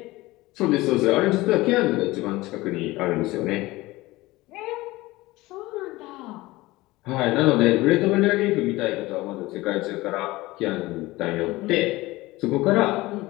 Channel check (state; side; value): quieter; right; 19.6 dB